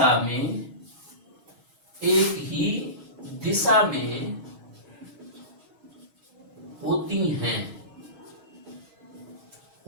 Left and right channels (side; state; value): left; late; 6.3 ms